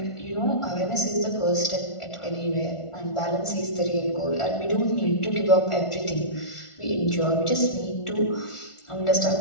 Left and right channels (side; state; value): right; late; 1.4 ms